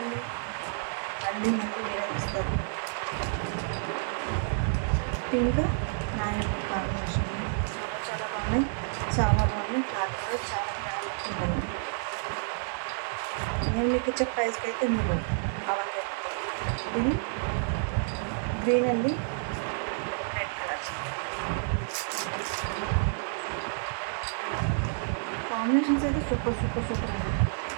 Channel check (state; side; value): silent; left; digital silence